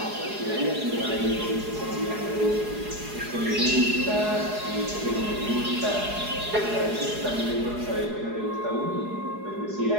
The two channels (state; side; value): late; left; 4.8 ms